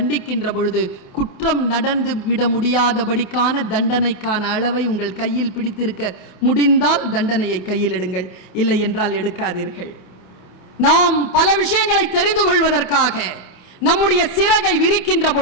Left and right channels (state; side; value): late; right; 28 ms